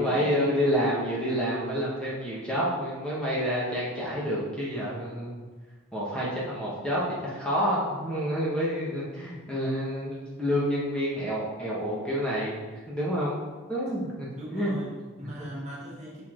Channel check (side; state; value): both; normal; correlation 0.31